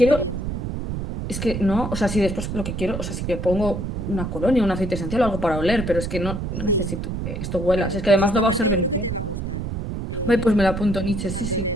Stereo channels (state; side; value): noise; right; rumble, 4 dB below the sound